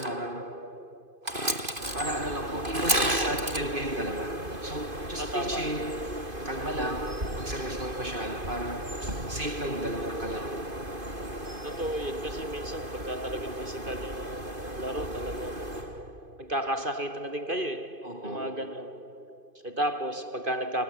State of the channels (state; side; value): late; left; 2.5 ms